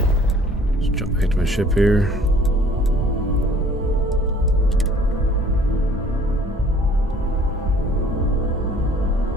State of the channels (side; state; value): both; normal; correlation 0.54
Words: Let's jump back to my ship here.